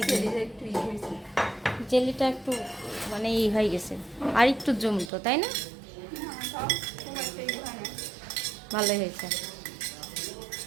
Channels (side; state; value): left; drops out; at 5.1 s